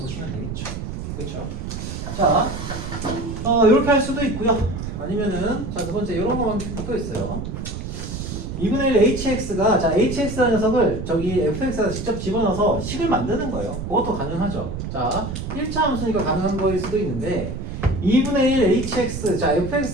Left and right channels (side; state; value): right; noise; rumble, 6 dB below the sound